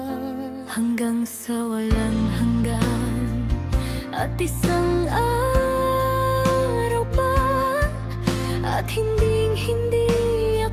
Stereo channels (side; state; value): both; identical; correlation 1.00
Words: hanggang sa walang hanggan. At isang araw pa, at hindi